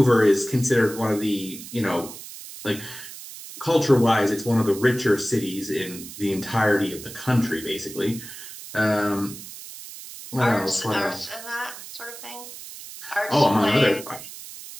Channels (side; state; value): right; noise; hiss, 13 dB below the sound